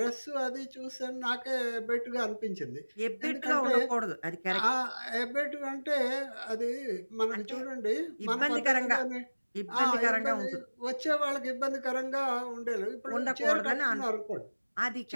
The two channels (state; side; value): inverted; both; correlation -1.00